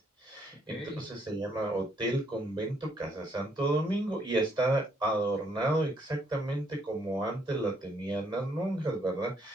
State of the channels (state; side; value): normal; both; correlation 0.71